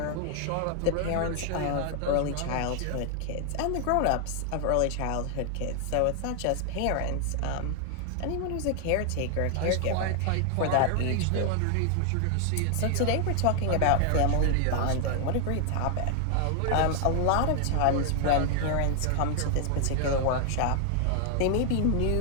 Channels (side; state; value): both; different; correlation 0.00